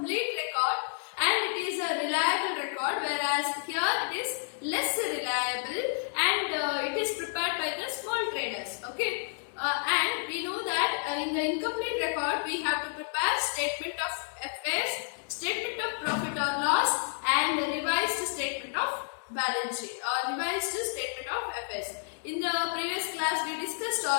record and it is a reliable record, whereas here it is less reliable and it is prepared by the small traders. Okay. And we know that in the incomplete record we have to prepare statement of affairs, statement of profit or loss, and revised statement of balance sheet or revised statement of affairs. In the previous class we discussed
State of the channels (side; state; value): right; silent; 58 dB below the other